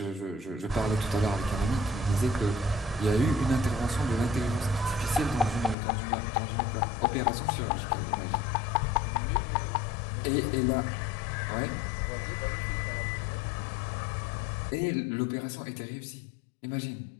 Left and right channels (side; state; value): right; drops out; at 5.8 s